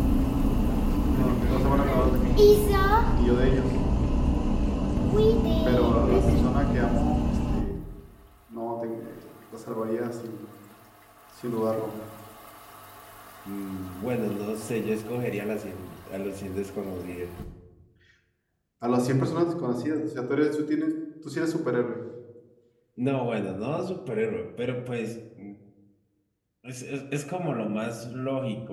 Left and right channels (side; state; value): both; identical; correlation 1.00